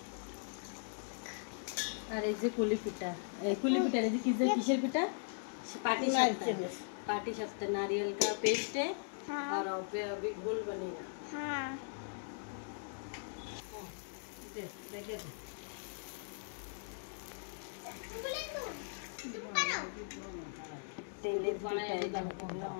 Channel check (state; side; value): silent; right; digital silence